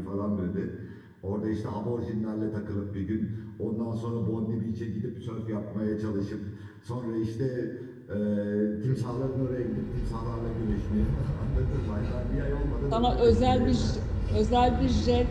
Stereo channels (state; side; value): identical; both; correlation 1.00